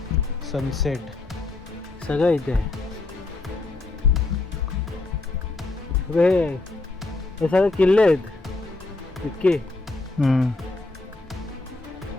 सनसेट सगळं इथे आहे. हे सगळे किल्ले आहेत इतके.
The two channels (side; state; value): right; quieter; 3.2 dB